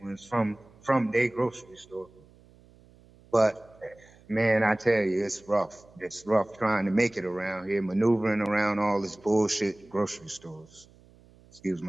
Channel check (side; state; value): right; noise; hum, 27 dB below the sound